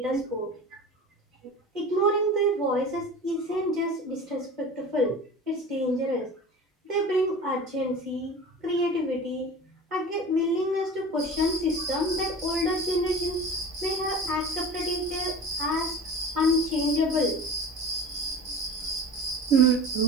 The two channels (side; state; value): both; normal; correlation 0.35